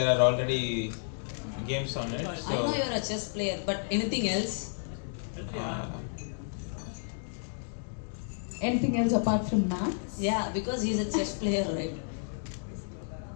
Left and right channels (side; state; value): right; silent; digital silence